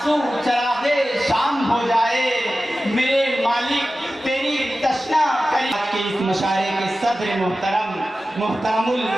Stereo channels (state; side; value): normal; both; correlation 0.95